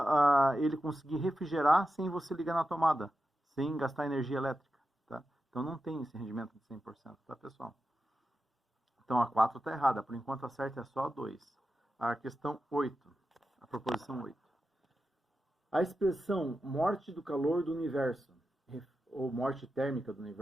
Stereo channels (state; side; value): normal; both; correlation 0.91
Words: ele conseguir refrigerar sem você ligar na tomada, sem gastar energia elétrica. Tá? Então, não tem esse rendimento de 100%, tá, pessoal? Então, a 4 está errada. Por enquanto, a certa é só a 2. A questão 8. A proposição 8. A expressão morte do calor do universo, ou morte térmica do